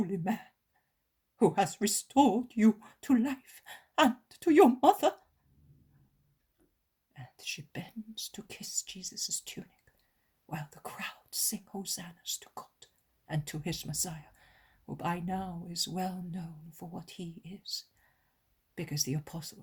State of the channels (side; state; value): both; identical; correlation 1.00